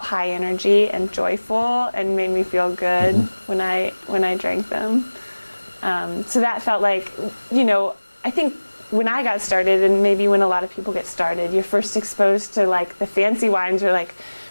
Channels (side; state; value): both; inverted; correlation -1.00